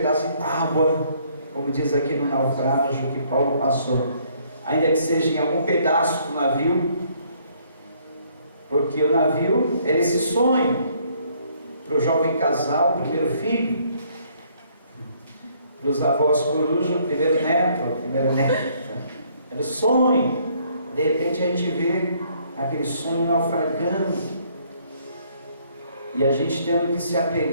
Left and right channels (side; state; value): both; inverted; correlation -0.65